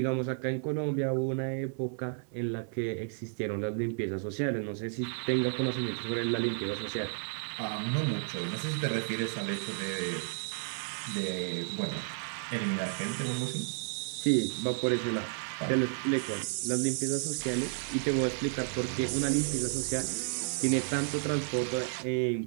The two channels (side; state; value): left; silent; 56 dB below the other